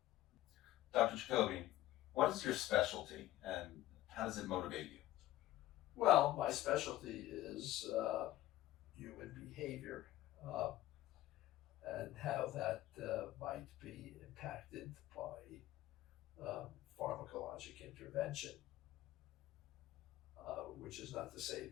Dr. Jacoby, what is your specialty and how does it motivate you? Well, my specialty is human behavior. And how that might be impacted by pharmacologic intervention, which is not to say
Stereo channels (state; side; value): quieter; right; 15.2 dB